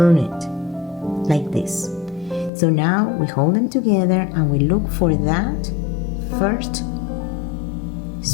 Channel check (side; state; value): right; drops out; at 2.5 s